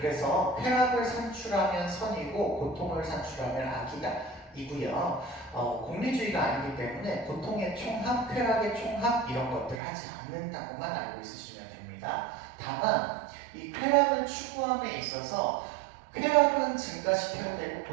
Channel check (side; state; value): left; drops out; at 9.8 s